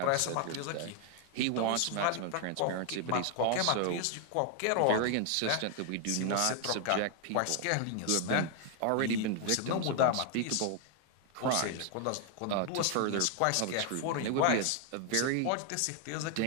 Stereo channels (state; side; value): different; both; correlation 0.00